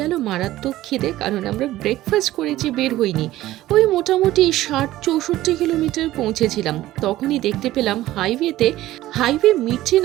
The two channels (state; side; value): quieter; left; 15.4 dB